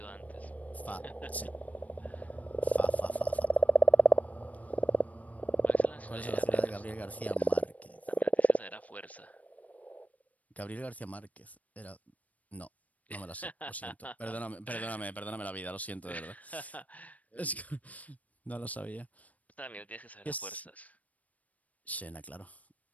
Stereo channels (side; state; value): right; late; 0.071 ms